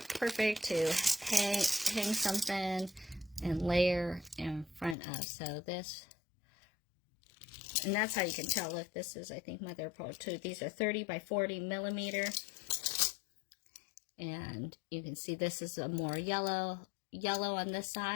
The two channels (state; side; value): drops out; right; at 5.0 s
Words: perfect to hang something and layer in front of. So this, and that's how you can tell if this is, I think, mother of pearl too. These are 30 by 40 millimeter. And you can see this is a more yellow on this